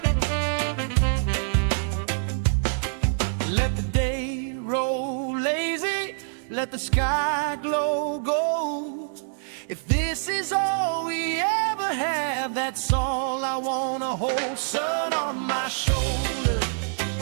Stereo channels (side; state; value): left; silent; 61 dB below the other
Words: Let the day roll lazy, let the sky glow gold. If this is all we ever have, that's all I wanna hold. Sun on my shoulders,